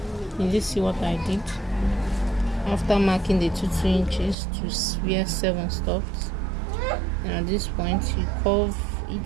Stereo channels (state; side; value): drops out; left; at 4.4 s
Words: Did you see what I did? After marking the 2 inches to wear 7 stops. And at this point you curve